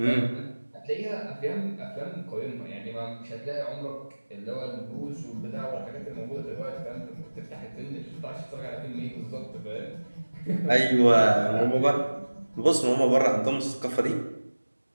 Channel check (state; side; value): inverted; both; correlation -1.00